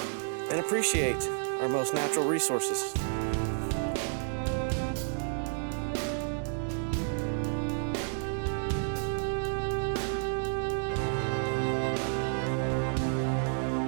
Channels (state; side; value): silent; left; digital silence